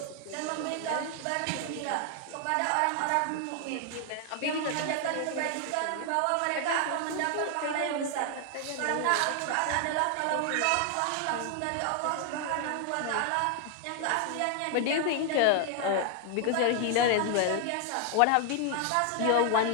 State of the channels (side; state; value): both; different; correlation 0.00